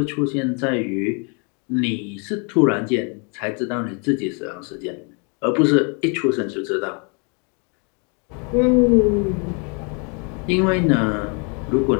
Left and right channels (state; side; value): quieter; right; 35.6 dB